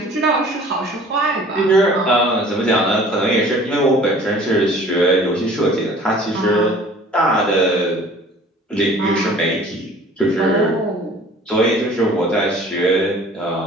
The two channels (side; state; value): both; normal; correlation 0.49